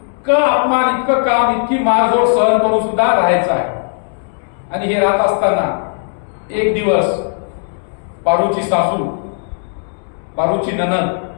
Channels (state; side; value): silent; right; 68 dB below the other